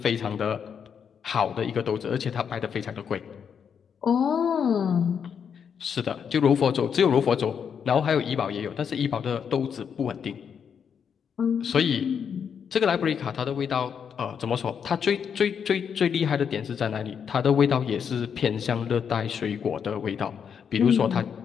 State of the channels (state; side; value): quieter; right; 7.3 dB